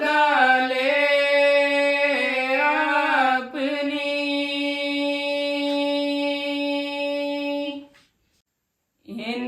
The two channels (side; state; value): both; identical; correlation 1.00